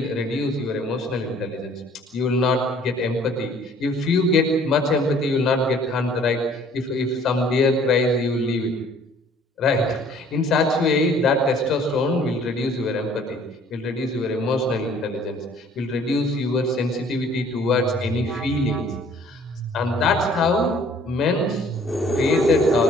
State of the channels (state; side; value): normal; both; correlation 0.56